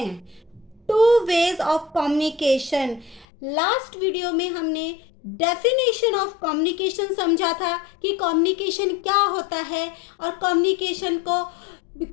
Two ways of communication. Last video में हमने डेफिनेशन ऑफ कम्युनिकेशन समझा था कि कम्युनिकेशन क्या होता है और कम्युनिकेशन को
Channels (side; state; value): right; drops out; at 3.2 s